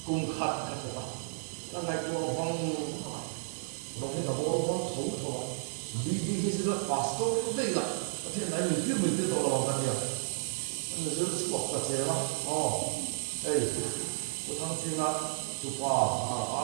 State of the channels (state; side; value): silent; left; 56 dB below the other